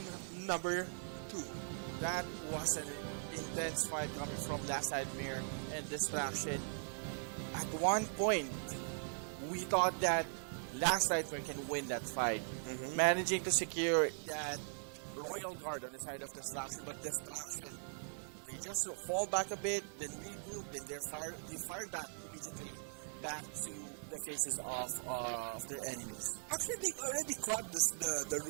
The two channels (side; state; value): left; silent; digital silence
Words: number 2. That was an intense fight coming from Last Nightmare and Distraction. At one point, we thought that Last Nightmare can win that fight, managing to secure that Royal Guard on the side of Distraction, but Distraction, they just fall back a bit, then regroup, then they fired back immediately back to the faces of their enemies. Actually, they already caught the